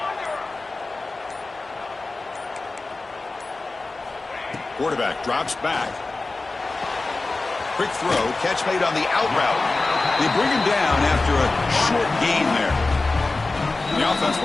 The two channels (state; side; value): quieter; right; 3.4 dB